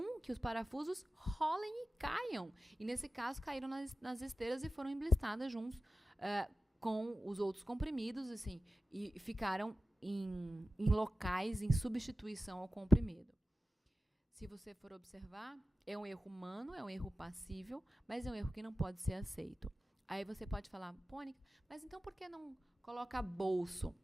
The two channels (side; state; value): both; normal; correlation 0.94